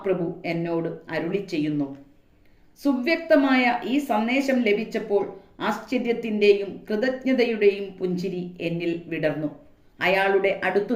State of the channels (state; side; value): identical; both; correlation 1.00